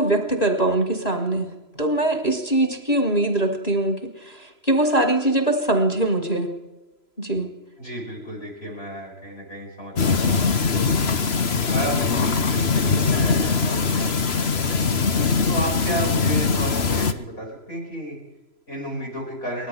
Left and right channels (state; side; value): late; right; 3.0 ms